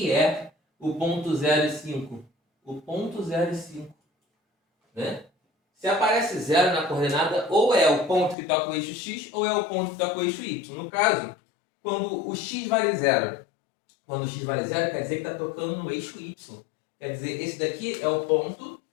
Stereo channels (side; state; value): right; drops out; at 8.3 s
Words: é o ponto 0 e 5? O ponto 0 e 5, né? Se aparece 0 na coordenada, ou é o ponto que toca o eixo x, ou é o ponto que toca o eixo y. No caso, quando o x vale 0, quando o x vale 0, quer dizer que está tocando no eixo y. Quer dizer, esse daqui é o ponto